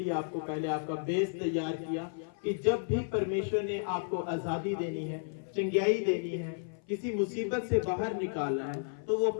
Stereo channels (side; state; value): right; silent; 56 dB below the other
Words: आपको पहले आपका बेस तैयार किया कि जब भी परमेश्वर ने आपको आजादी देनी है, चंगाई देनी है, किसी मुसीबत से बाहर निकालना है, तो वो